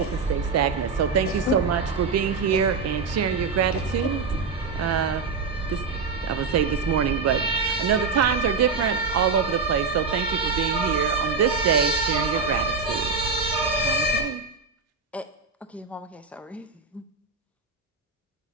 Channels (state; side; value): quieter; left; 4.8 dB